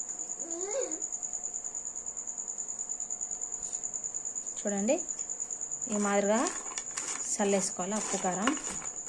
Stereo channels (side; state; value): both; identical; correlation 1.00